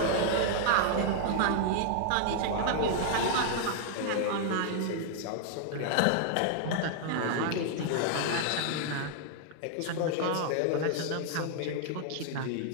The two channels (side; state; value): both; different; correlation -0.01